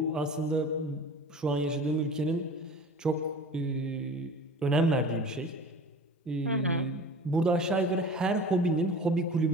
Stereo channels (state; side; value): normal; both; correlation 0.39